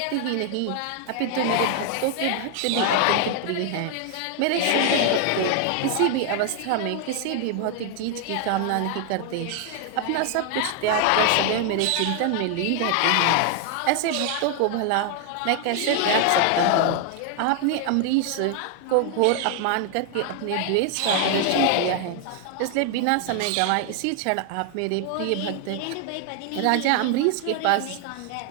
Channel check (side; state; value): both; different; correlation 0.00